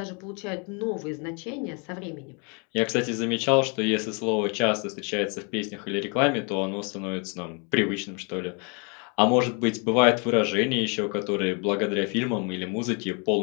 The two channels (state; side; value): quieter; right; 34.8 dB